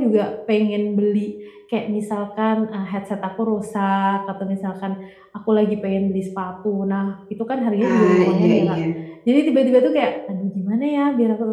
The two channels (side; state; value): both; identical; correlation 1.00